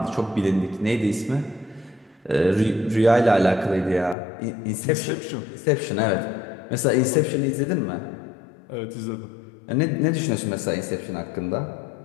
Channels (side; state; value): right; drops out; at 4.2 s